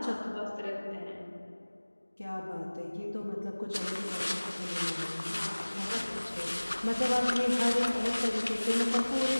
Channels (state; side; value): inverted; both; correlation -1.00